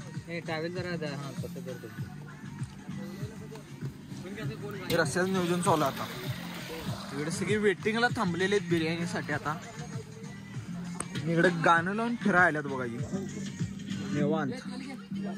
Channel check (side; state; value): both; identical; correlation 1.00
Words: रस्त्याचं नियोजन चालू आता. इकडे सगळी वेटिंगला थांबलेले आहेत बिर्याणीसाठी. आता इकडे गाणं लावून फिरायला बघा निवांत.